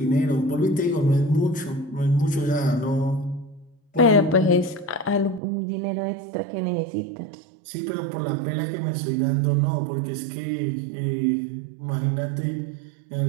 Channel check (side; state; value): left; drops out; at 5.4 s